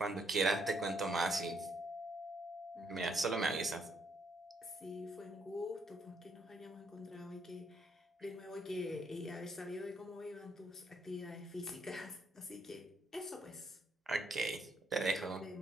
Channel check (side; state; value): both; normal; correlation 0.72